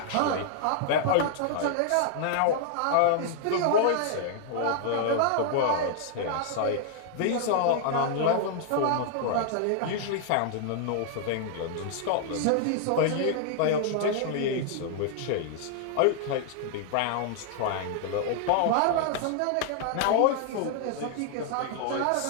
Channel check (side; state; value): both; different; correlation -0.01